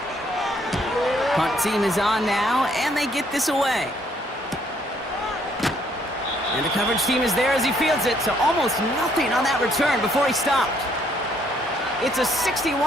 Punt team is on now, and they get this away. And the coverage team is there as he fields it, so almost nothing on that return before he stopped. It's a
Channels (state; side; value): normal; both; correlation 0.68